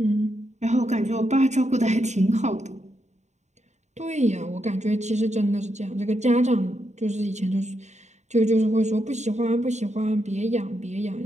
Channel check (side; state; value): left; late; 0.33 ms